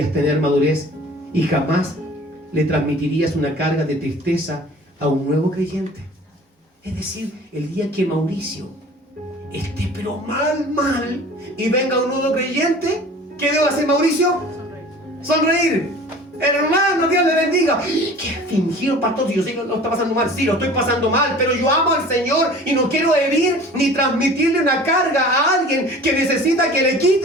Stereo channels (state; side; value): normal; both; correlation 0.44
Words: tener madurez y jamás le transmitirías una carga de tristeza a un nuevo creyente. Es decir, el día que Mauricio esté pero mal, y venga un nuevo creyente, ¿qué debo hacer, Mauricio? Sonreír. Hermano, Dios le bendiga. ¿Qué fingido, pastor? Si yo sé que lo está pasando mal. Sí, lo estoy pasando mal, pero yo amo al Señor y no quiero herir ni transmitirle una carga a alguien que necesita que le